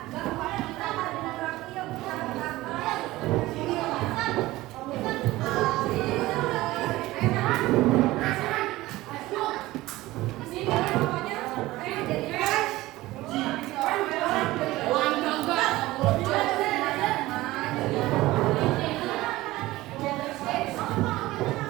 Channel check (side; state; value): left; quieter; 18.1 dB